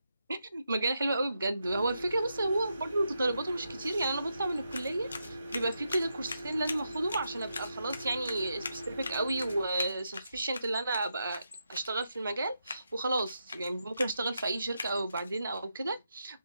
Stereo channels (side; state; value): both; inverted; correlation -0.84